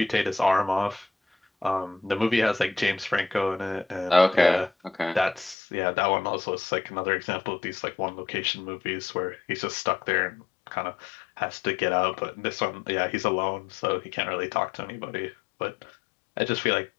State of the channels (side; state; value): right; drops out; at 5.6 s